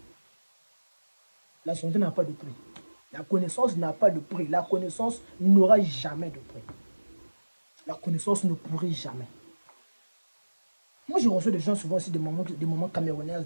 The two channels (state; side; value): inverted; both; correlation -1.00